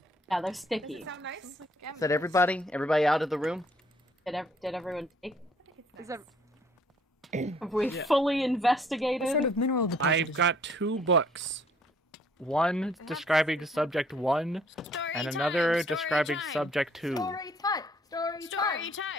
Yeah, they're Does sticky. it sound nice? Is that everybody? Everybody out of the room? Did everyone take? Is that Have we Yeah. fully What investigated? sort of mineral deposit I've is got 2 books. One describing subject 1, Story and time, another story describing time. subject 2. Story time. Story Story time.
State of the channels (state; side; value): normal; both; correlation 0.61